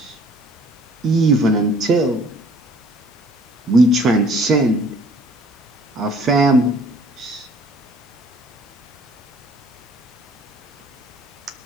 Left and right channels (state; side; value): normal; both; correlation 0.56